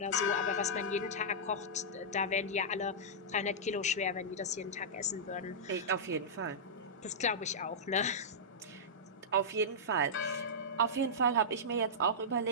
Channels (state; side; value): normal; both; correlation -0.13